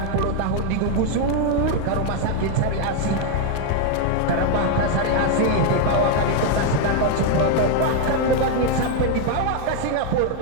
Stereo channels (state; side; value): different; both; correlation 0.01